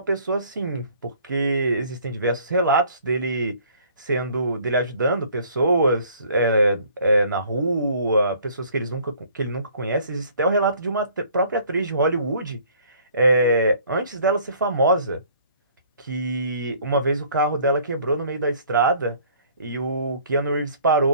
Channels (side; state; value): both; inverted; correlation -0.56